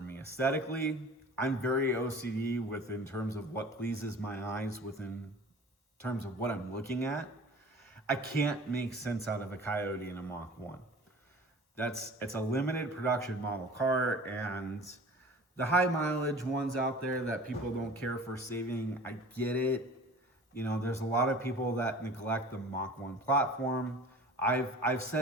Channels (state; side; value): normal; both; correlation 0.43